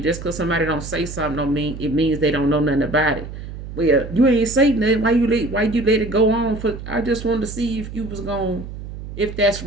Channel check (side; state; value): right; noise; hum, 10 dB below the sound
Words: just because somebody don't say something don't mean it means they don't know nothing about it. Well, you ain't say nothing. Why you let it go on for? I just wanted to see if that's